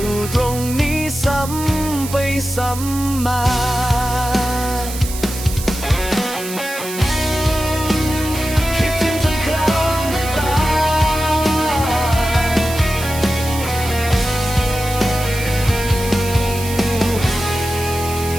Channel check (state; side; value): noise; right; hiss, 10 dB below the sound